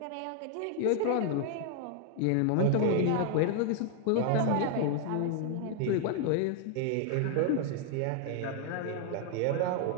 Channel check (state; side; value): different; both; correlation 0.00